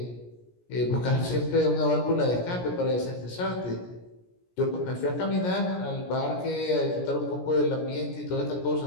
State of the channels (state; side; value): late; right; 17 ms